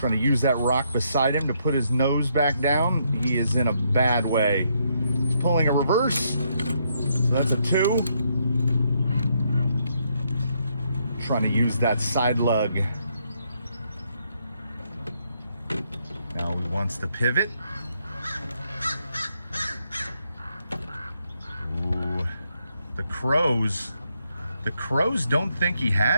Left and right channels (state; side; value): inverted; both; correlation -0.76